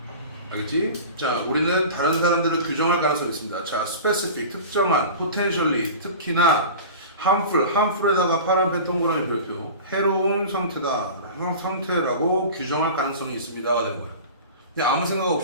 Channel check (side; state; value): both; inverted; correlation -0.35